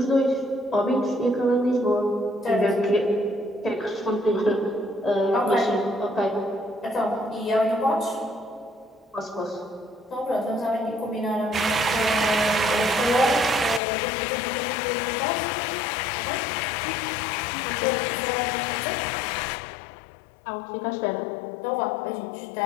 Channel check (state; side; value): drops out; right; at 13.8 s